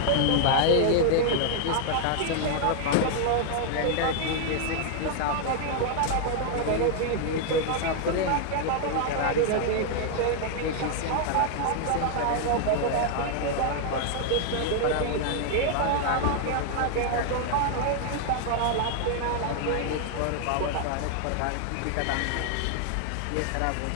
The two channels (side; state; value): both; different; correlation 0.00